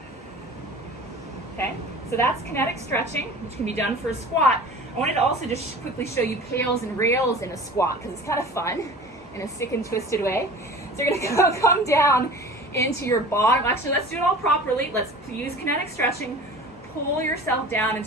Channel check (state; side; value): normal; both; correlation 0.40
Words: Okay? So that's kinetic stretching, which can be done for a squat. I wanted to also just quickly show you pails and rails in a squat because it's kind of fun in a sick and twisted way. So you're going to come down into your bottom. Actually, let's do it all properly. Let's use kinetic stretching. Pull yourself down